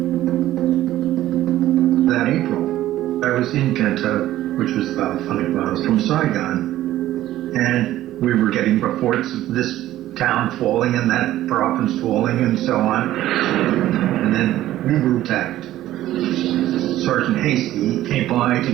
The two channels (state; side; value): quieter; left; 14.1 dB